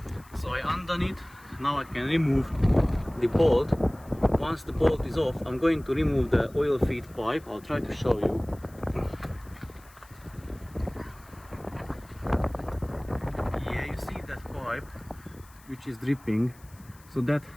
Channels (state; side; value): noise; left; hiss, 26 dB below the sound